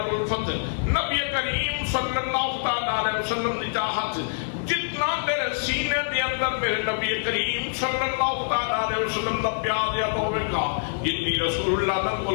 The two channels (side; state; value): right; silent; digital silence